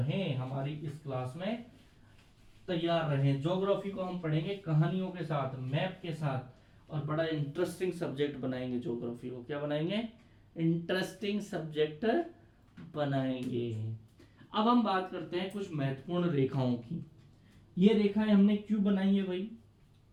हमारी इस क्लास में तैयार रहें। ज्योग्राफी को हम पढ़ेंगे कहानियों के साथ, मैप के साथ, और बड़ा इंटरेस्टिंग सब्जेक्ट बनाएंगे। ज्योग्राफी को क्या बनाएंगे? इंटरेस्टिंग सब्जेक्ट बनाएंगे। अब हम बात करते हैं कुछ महत्वपूर्ण रेखाओं की। ये रेखाएं हमने क्यों बनाई है भाई?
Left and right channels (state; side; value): identical; both; correlation 1.00